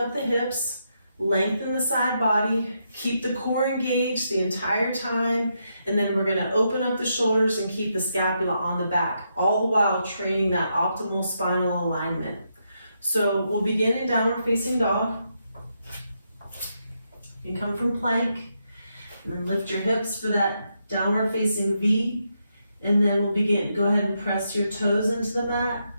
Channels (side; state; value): both; inverted; correlation -0.81